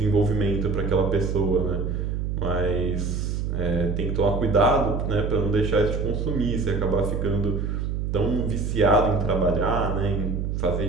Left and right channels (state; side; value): noise; right; hum, 1 dB below the sound